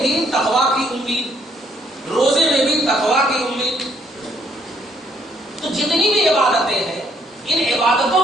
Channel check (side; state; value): both; normal; correlation 0.68